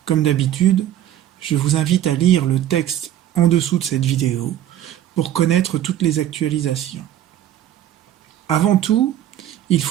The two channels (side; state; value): left; quieter; 11.8 dB